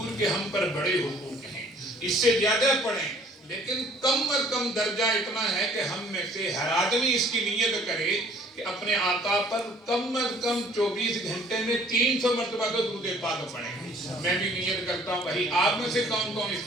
کے ہم پر بڑے حقوق ہیں، اس سے زیادہ پڑھیں، لیکن کم از کم درجہ اتنا ہے کہ ہم میں سے ہر آدمی اس کی نیت کرے کہ اپنے آقا پر کم از کم 24 گھنٹے میں 300 مرتبہ تو درود پاک پڑھیں۔ میں بھی نیت کرتا ہوں، بھائی آپ میں سے کون کون اس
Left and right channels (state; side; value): normal; both; correlation 0.56